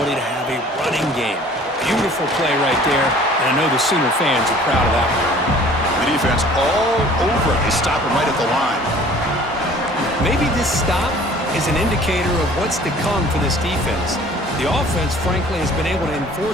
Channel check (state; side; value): normal; both; correlation 0.50